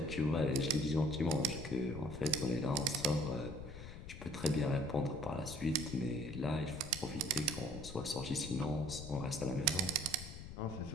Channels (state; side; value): noise; left; rumble, 12 dB below the sound